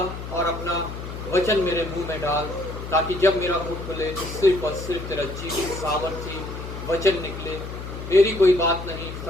और अपना वचन मेरे मुंह में डाल, ताकि जब मेरा मुंह खुले तो सिर्फ और सिर्फ तेरा जीवित सामर्थ्य वचन निकले। मेरी कोई बात नहीं,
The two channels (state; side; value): noise; left; hum, 9 dB below the sound